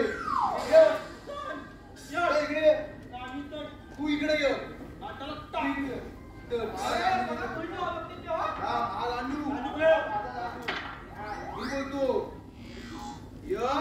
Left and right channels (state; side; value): identical; both; correlation 1.00